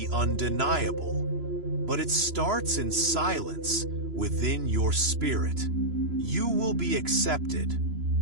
undeniable, but it starts in silence within your spirit. You will be accepted,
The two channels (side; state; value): left; late; 3.0 ms